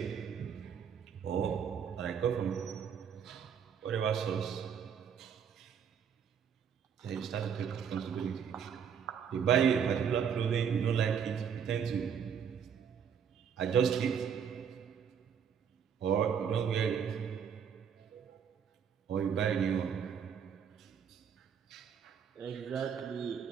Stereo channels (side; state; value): left; quieter; 7.6 dB